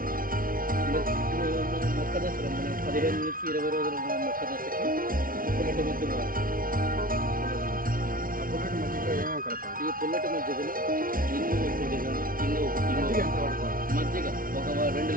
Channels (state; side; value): late; left; 0.41 ms